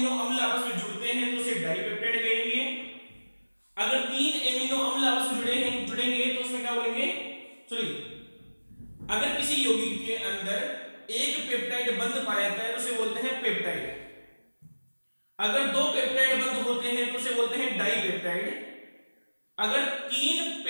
अम्ल आपस में जुड़ते हैं तो उसे डाइपेप्टाइड कहेंगे। अगर तीन एमिनो अम्ल आपस में जुड़ेंगे तो उसमें क्या बोलेंगे? सॉरी, अगर किसी यौगिक के अंदर एक पेप्टाइड बंध पाया जाता है तो उसे बोलते हैं पेप्टाइड। अगर दो पेप्टाइड बंध होते हैं तो उसे बोलते हैं डाइपेप्टाइड। अगर तीन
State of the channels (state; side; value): inverted; both; correlation -1.00